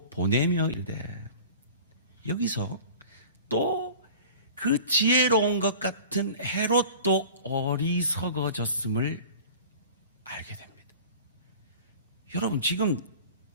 보내며 이르되 여기서 또 그 지혜로운 것 같은 헤롯도 어리석어졌음을 알게 됩니다. 여러분 지금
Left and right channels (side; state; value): both; inverted; correlation -0.41